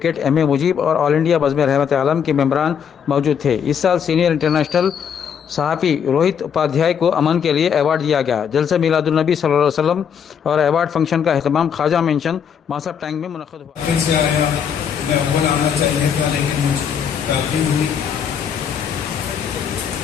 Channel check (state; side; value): quieter; right; 7.7 dB